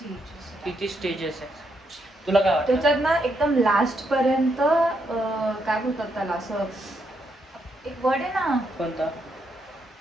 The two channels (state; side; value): normal; both; correlation 0.78